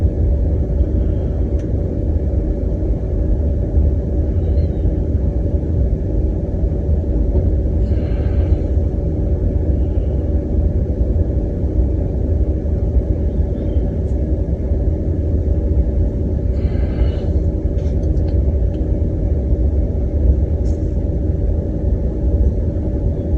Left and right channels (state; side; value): identical; both; correlation 1.00